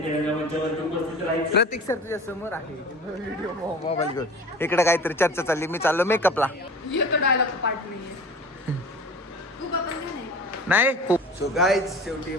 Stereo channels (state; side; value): normal; both; correlation 0.39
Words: रंगमंचावरती उपस्थित राहायचे. प्रतीक सर तुझ्या समोर आहे व्हिडिओ मोबाईल घेऊन. इकडे काहीतरी चर्चा चालली. मी चाललो मेकअपला. येतो डायलॉग पार्ट नाहीये. तू का पण नाही सो गाईज शेवटी